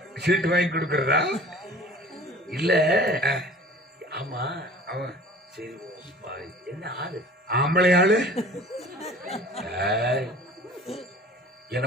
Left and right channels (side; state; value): both; normal; correlation 0.44